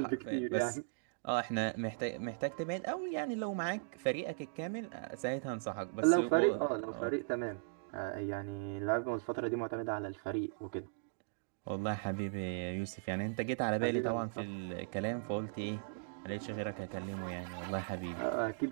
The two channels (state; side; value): silent; left; digital silence